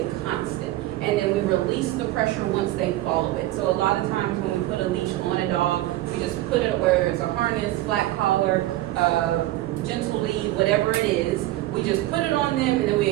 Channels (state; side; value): quieter; left; 16.0 dB